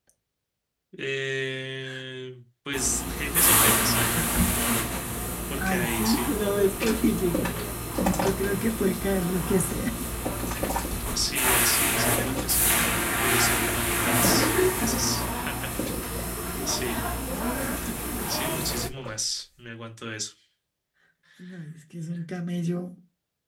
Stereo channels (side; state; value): both; identical; correlation 1.00